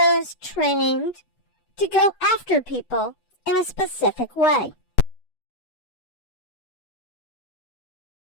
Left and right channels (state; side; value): late; right; 8.1 ms